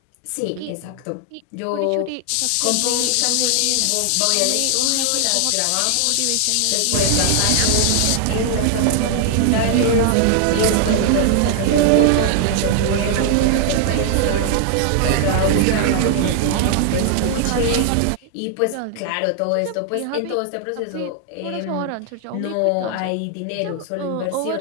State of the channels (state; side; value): different; both; correlation 0.00